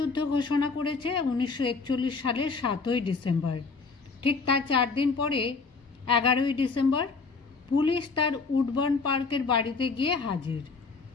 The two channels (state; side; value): quieter; right; 4.4 dB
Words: ঘোষণা করেছে 1941 সালের 7ই ডিসেম্বর। ঠিক তার 4 দিন পরে 11ই ডিসেম্বর পুলিশ তার উডবর্ন পার্কের বাড়িতে গিয়ে হাজির।